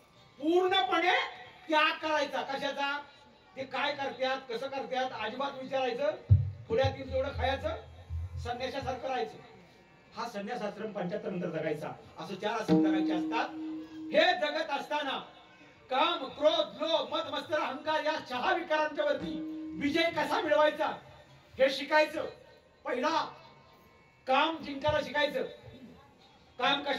पूर्णपणे त्याग करायचा. कशाचा? ते काय करतात, कसं करतात अजिबात विचारायचं. पुढ्यात येईल तेवढं खायचं, संन्यासासारखं राहायचं. हा संन्यास आश्रम 75 नंतर जगायचा. असं 4 आश्रम जगायचे असतात. हे जगत असताना काम, क्रोध, लोभ, मद, मत्सर, अहंकार या 6 विकारांच्या वरती विजय कसा मिळवायचा हे शिकायचं. पहिला काम जिंकायला शिकायचं. काम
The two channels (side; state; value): both; identical; correlation 1.00